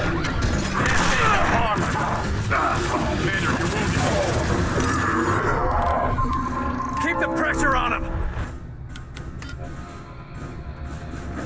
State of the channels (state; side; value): identical; both; correlation 1.00